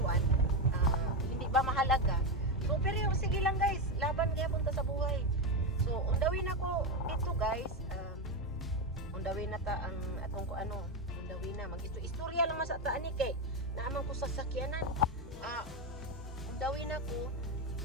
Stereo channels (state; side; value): normal; both; correlation 0.11